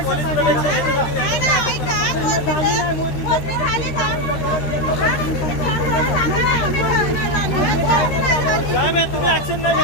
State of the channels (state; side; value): late; right; 13 ms